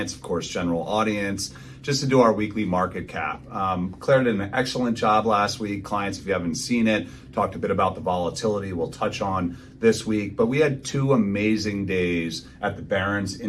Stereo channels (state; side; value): identical; both; correlation 1.00